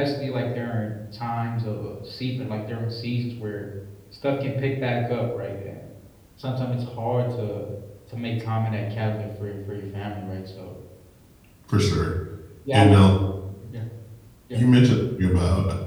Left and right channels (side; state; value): both; identical; correlation 1.00